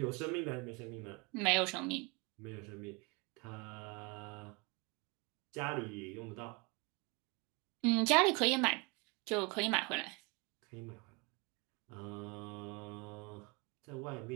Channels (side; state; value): left; quieter; 29.0 dB